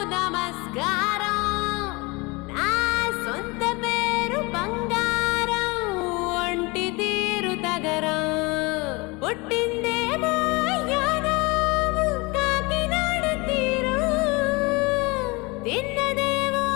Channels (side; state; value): right; quieter; 25.9 dB